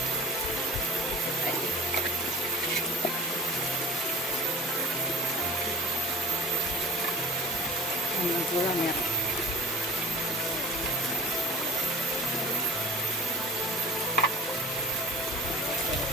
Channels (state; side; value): normal; both; correlation 0.36